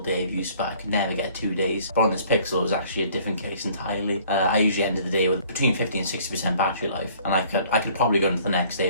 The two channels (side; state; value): both; inverted; correlation -0.56